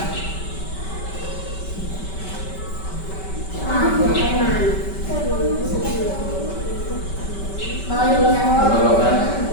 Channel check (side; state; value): right; late; 5.2 ms